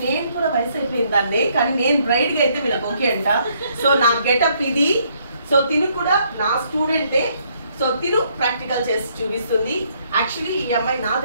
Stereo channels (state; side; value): inverted; both; correlation -0.69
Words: నేను కూడా వయసు అయిపోయిందాన్ని, కానీ నేను బ్రైడ్ గా అయితే వీళ్ళకి ఓకే అంట. సో నా గెటప్ ఇది. సో తిను కూడా నా స్టూడెంటే. సో తిను ప్రాక్టికల్ చేసి చూపిస్తుంది. యాక్చువల్లీ ఈ అమ్మాయి నా